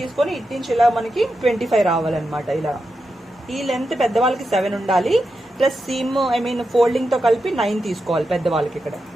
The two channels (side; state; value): both; normal; correlation 0.88